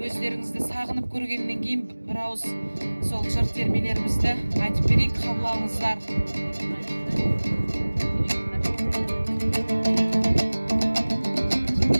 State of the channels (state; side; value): inverted; both; correlation -1.00